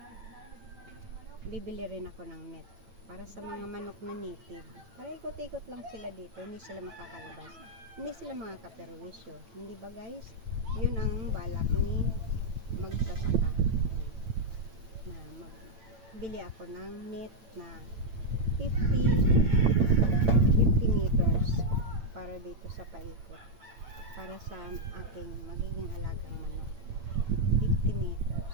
Bibili rin ako ng net para sa mga manok na native. Para ikot-ikot lang sila dito, hindi sila makakalabas. Hindi sila mga kaperwisyo. Hindi ba guys? Yun ang balak ni magsasaka. Na magbili ako ng net na 50 meters para dito sa paikot. Para sa aking magiging alagang manok. 50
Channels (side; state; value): left; late; 8.9 ms